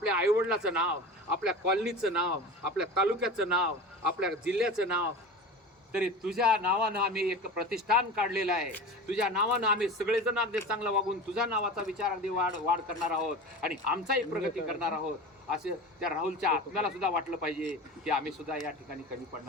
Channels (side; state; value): both; normal; correlation 0.32